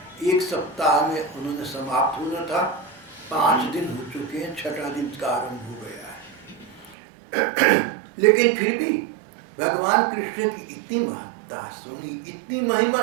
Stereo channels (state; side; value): drops out; left; at 7.0 s